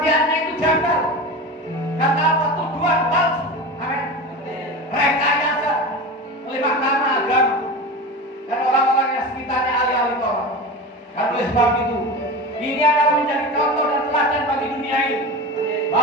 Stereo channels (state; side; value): normal; both; correlation 0.29